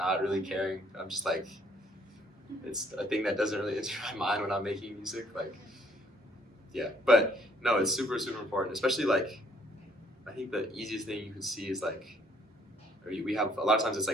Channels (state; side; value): normal; both; correlation 0.64